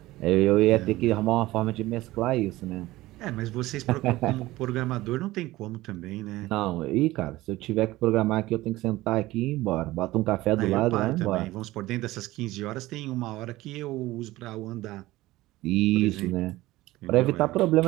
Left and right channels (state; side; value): quieter; left; 17.9 dB